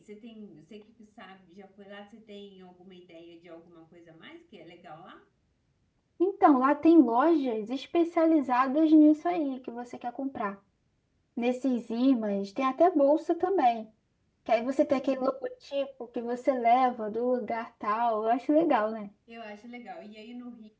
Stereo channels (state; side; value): identical; both; correlation 1.00